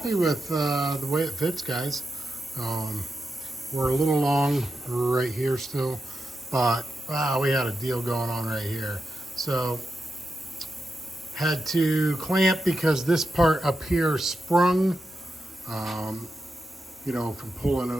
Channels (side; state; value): both; normal; correlation 0.88